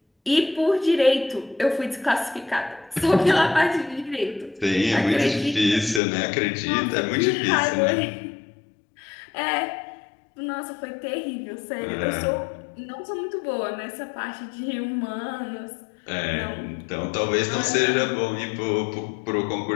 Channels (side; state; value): right; drops out; at 6.0 s